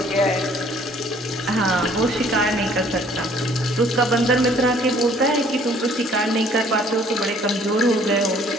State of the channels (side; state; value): both; normal; correlation 0.58